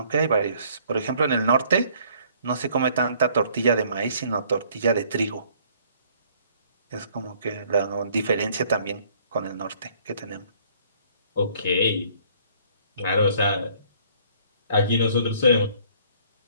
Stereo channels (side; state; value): both; inverted; correlation -0.59